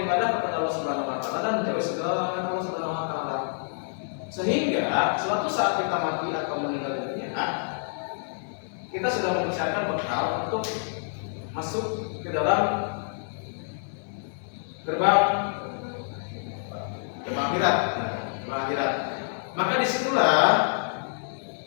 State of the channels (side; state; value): right; silent; 60 dB below the other